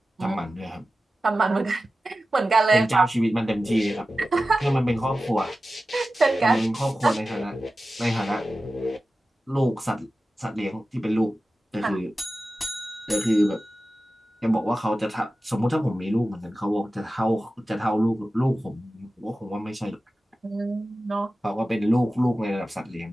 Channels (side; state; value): both; normal; correlation 0.94